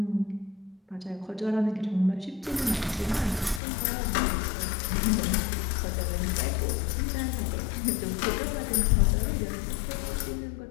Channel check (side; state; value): right; drops out; at 3.6 s